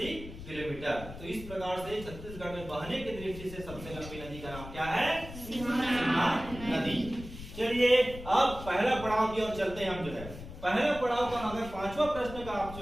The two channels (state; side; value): noise; left; rumble, 12 dB below the sound